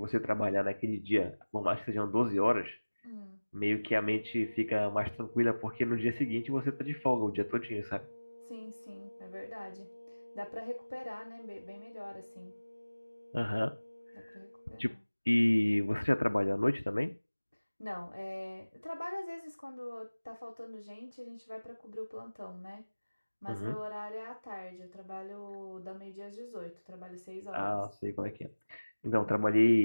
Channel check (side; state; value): both; inverted; correlation -1.00